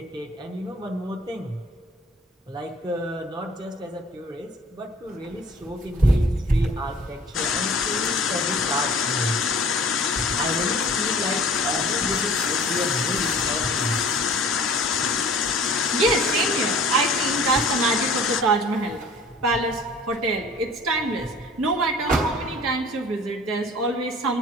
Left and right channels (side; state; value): both; normal; correlation 0.47